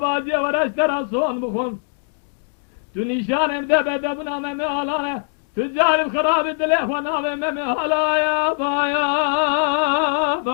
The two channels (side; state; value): right; silent; 60 dB below the other